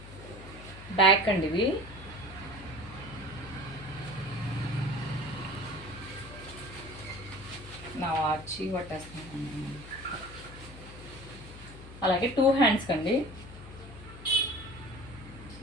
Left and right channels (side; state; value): left; noise; hum, 15 dB below the sound